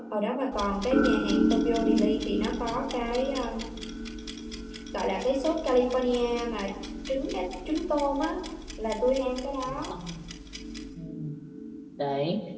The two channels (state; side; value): identical; both; correlation 1.00